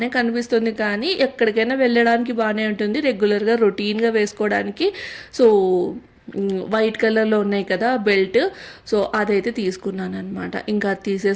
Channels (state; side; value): identical; both; correlation 1.00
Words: కనిపిస్తుంది కానీ ఎక్కడికైనా వెళ్ళడానికి బాగానే ఉంటుంది, రెగ్యులర్గా రొటీన్గా వేసుకోవడానికి. సో వైట్ కలర్లో ఉన్నాయి కదా బెల్ట్, సో అదైతే తీసుకున్నాను అనమాట. ఇంకా అది